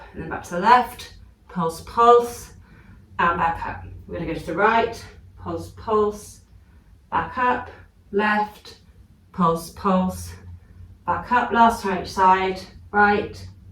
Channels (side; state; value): both; identical; correlation 1.00